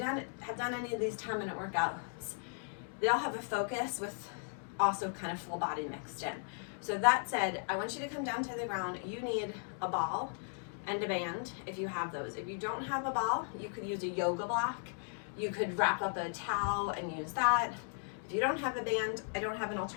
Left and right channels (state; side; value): silent; right; 53 dB below the other